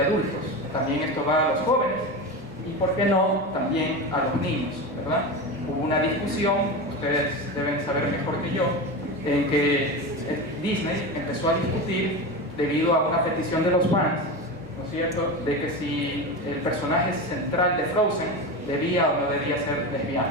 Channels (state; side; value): normal; both; correlation 0.23